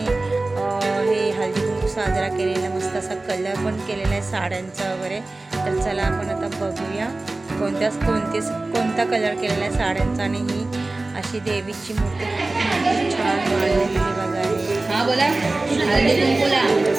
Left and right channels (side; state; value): left; quieter; 3.1 dB